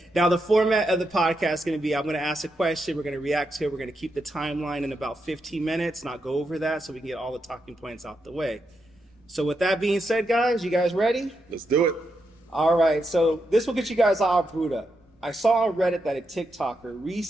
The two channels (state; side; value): normal; both; correlation 0.84